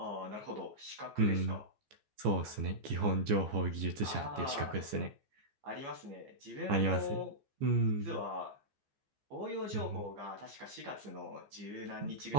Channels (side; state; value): left; late; 14 ms